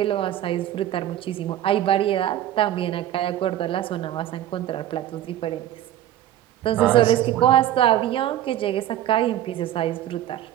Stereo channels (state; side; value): quieter; left; 12.4 dB